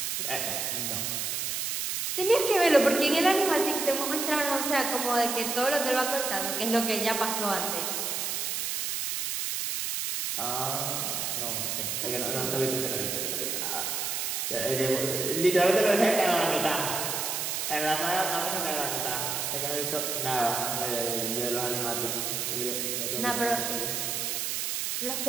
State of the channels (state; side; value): noise; right; hiss, 1 dB below the sound